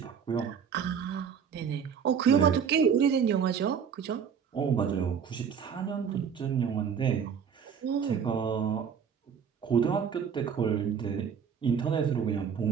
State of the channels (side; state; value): left; quieter; 7.2 dB